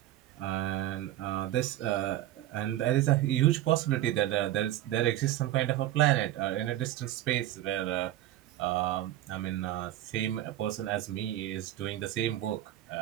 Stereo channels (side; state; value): left; quieter; 13.8 dB